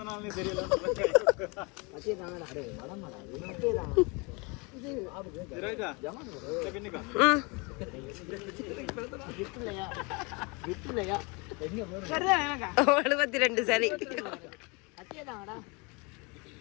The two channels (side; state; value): right; quieter; 29.3 dB